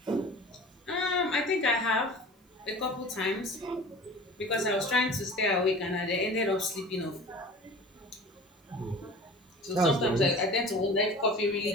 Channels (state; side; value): normal; both; correlation 0.40